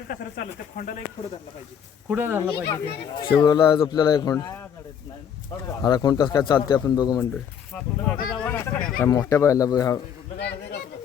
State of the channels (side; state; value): right; quieter; 8.1 dB